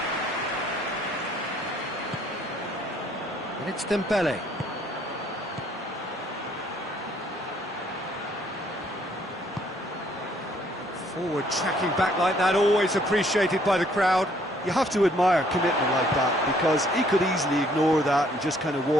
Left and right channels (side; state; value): both; normal; correlation 0.64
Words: And it's Dembele. Forward tracking back like that, always appreciated by the crowd. You have to admire commitment like that, because he could easily ignore that and just kind of